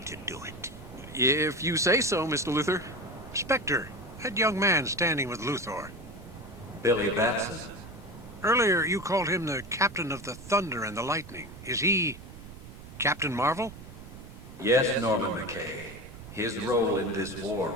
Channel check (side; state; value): right; noise; rumble, 15 dB below the sound